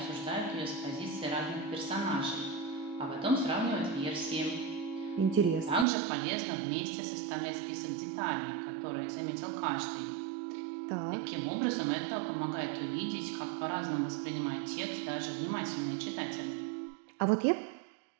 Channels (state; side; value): drops out; left; at 5.9 s